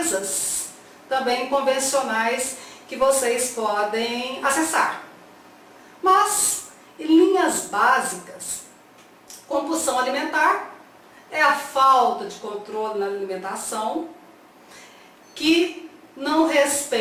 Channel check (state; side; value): identical; both; correlation 1.00